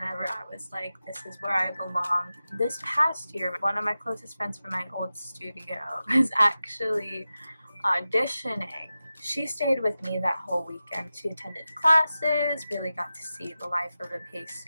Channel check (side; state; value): both; inverted; correlation -0.94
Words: I was like, this is where I belong. This past year, one of my closest friends from my old studio was actually auditioning. She stayed with me that whole weekend. She attended classes, really got to see the life of a PACE